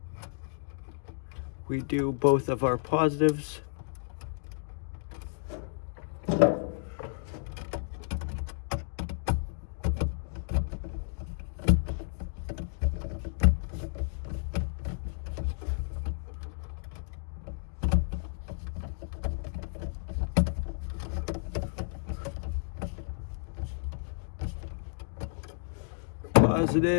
we do both of our positives.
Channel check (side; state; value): right; silent; digital silence